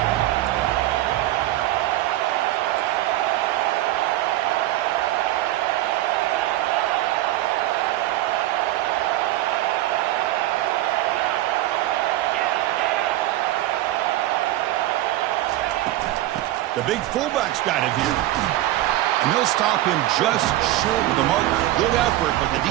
The big fullback's got it here. And they'll stop him just short of the marker. Good effort, but the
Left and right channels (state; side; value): quieter; left; 15.5 dB